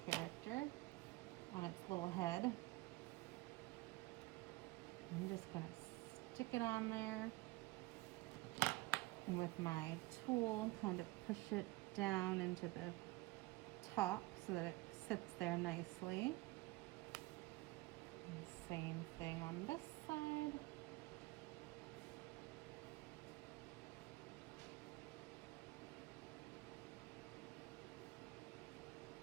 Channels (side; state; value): left; quieter; 20.3 dB